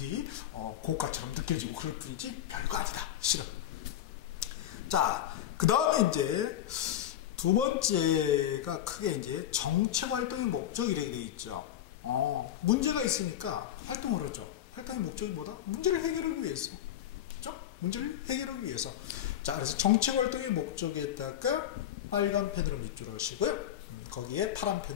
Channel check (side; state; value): right; quieter; 11.3 dB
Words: 고가처럼 느껴지고 그럴 뿐이지 별거 아니다. 실은. 자, 그 다음에 이제 두 번째가 크게 이제 정책 활동의 목적 이렇게 되어 있죠. 문제가 있으니까 활동을 하죠. 활동의 목적이 뭐다? 문제를 해결하기 위해서. 그렇죠? 문제를 해결하기 위해서. 자, 그래서 정책 활동의 목적에다가 빨간 펜으로 밑줄 하시고요. 거기에 파란